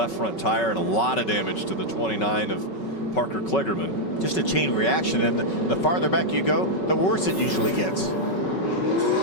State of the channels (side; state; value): right; late; 5.3 ms